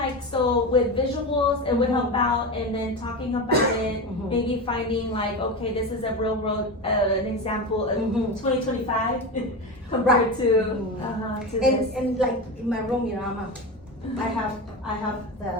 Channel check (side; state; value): both; normal; correlation 0.21